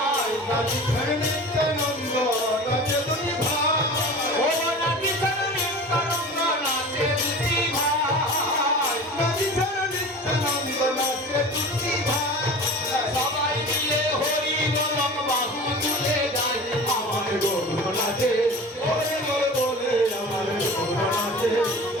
রাজি ছাড়া নিত্যানন্দ নাচে দুটি ভাই, ও রাজি ছাড়া নিত্যানন্দ নাচে দুটি ভাই, রাজি ছাড়া নিত্যানন্দ নাচে দুটি ভাই। সবাই মিলে হরি বলম বাহু তুলে যায় আমার গৌর নাচে, হরি বলে আমার গৌর নাচে,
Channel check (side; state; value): both; normal; correlation 0.36